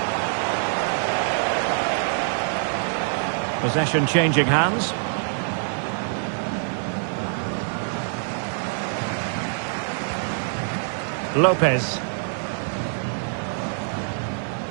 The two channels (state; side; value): silent; left; digital silence